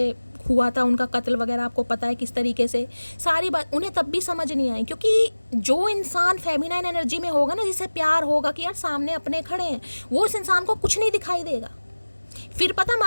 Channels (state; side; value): inverted; both; correlation -1.00